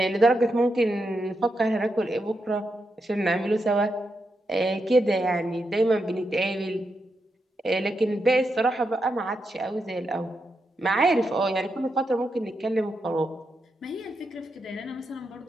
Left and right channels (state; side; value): normal; both; correlation 0.85